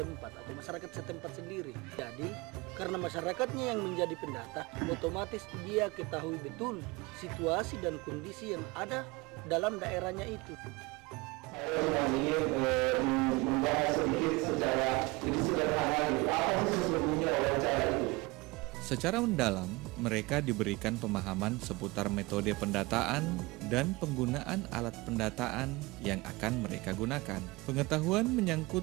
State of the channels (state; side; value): quieter; left; 23.9 dB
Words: atau masyarakat setempat sendiri. Jadi karena masyarakatnya yang menjadi pendata, otomatis dia ketahui betul situasi dan kondisi yang ada dalam daerahnya itu. Saya ingin membahas sedikit secara lebih sederhana apa sih sesungguhnya wawancara itu. Secara mendalam, mereka diberikan pemahaman seputar metode pendataan dan penggunaan alat pendataan yang akan mereka gunakan. Pengetahuan